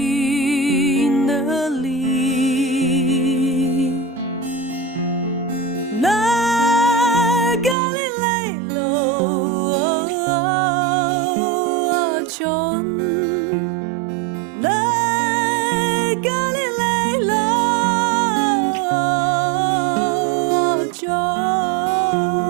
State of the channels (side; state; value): left; drops out; at 7.8 s